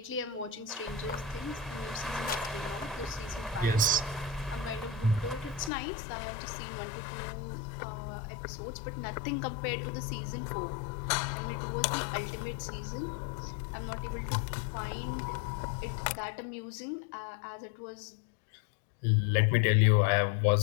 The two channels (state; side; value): drops out; right; at 5.7 s